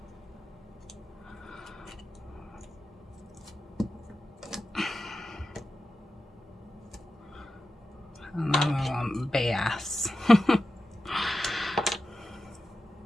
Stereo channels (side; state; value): both; normal; correlation 0.91